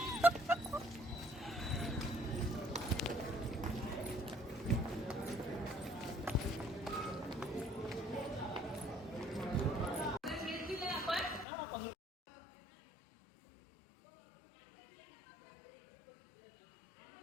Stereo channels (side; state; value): right; drops out; at 11.5 s